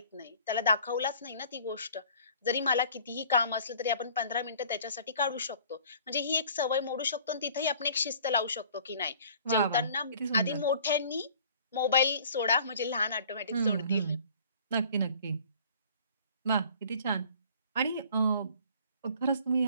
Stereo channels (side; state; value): both; inverted; correlation -0.52